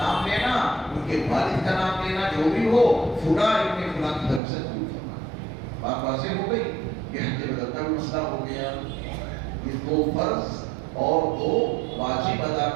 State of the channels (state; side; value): drops out; left; at 4.4 s